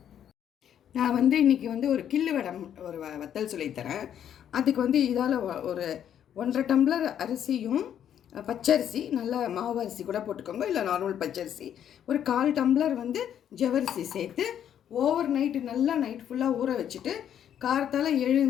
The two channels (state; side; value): quieter; right; 9.7 dB